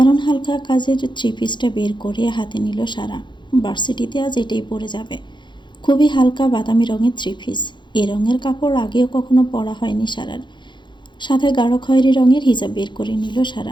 হালকা কাজের থ্রি পিসটা বের করে হাতে নিল সারা। ভার্সিটিতে আজ এটাই পরে যাবে। খুবই হালকা বাদামি রঙের থ্রি পিস। এ রঙের কাপড় আগেও কখনো পরা হয়নি সারার। সাথে গাঢ় খয়েরি রঙের হিজাব বের করে নিল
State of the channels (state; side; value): late; right; 0.23 ms